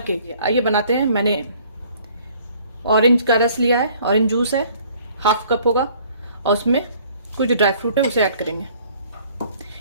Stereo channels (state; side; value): inverted; both; correlation -0.57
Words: आइए बनाते हैं। मैंने ऑरेंज का रस लिया है, ऑरेंज जूस है, हाफ कप होगा, और उसमें कुछ ड्राई फ्रूट है, उसे ऐड करेंगे।